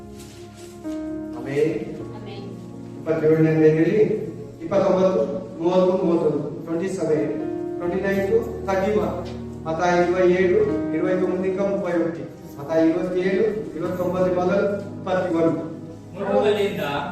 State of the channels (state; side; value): identical; both; correlation 1.00